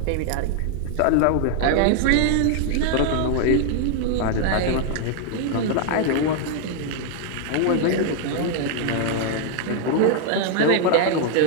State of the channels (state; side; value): different; both; correlation 0.00